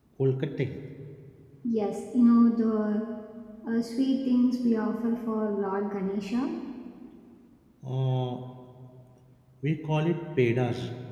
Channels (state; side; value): identical; both; correlation 1.00